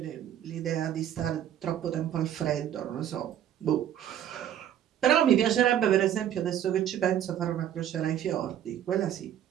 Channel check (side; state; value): left; quieter; 10.6 dB